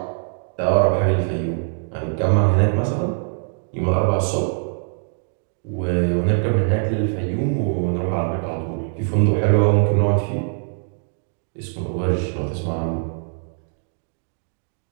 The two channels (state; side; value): silent; left; digital silence